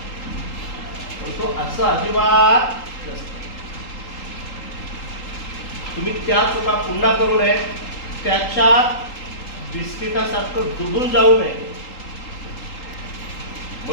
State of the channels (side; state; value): right; late; 3.8 ms